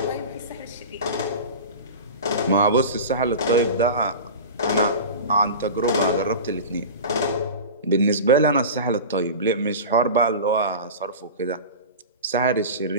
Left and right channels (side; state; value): both; inverted; correlation -0.31